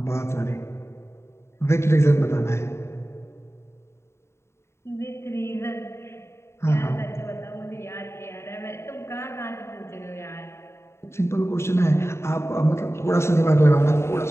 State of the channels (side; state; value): right; late; 0.13 ms